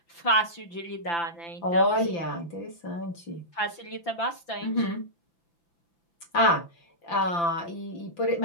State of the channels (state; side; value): late; right; 5.9 ms